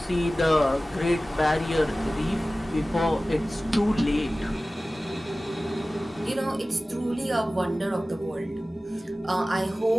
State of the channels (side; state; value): both; normal; correlation 0.97